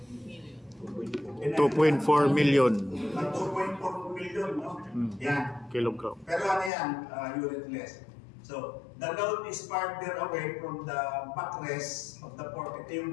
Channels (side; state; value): right; drops out; at 6.7 s